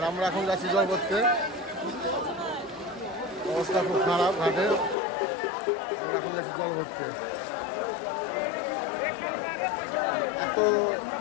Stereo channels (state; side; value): drops out; right; at 5.0 s